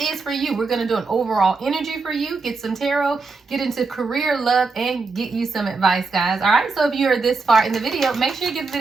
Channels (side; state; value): left; quieter; 4.2 dB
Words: for you. We're going to do an overall energy for you, get some tarot, get into career, love, and get you some advice, guys. All right, so if you are this far in the video, make sure you give the